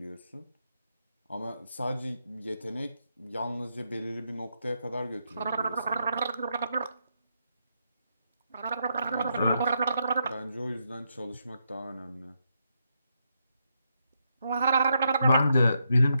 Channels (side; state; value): both; inverted; correlation -0.81